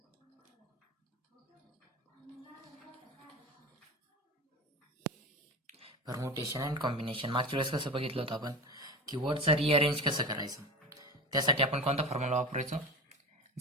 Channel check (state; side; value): normal; both; correlation 0.28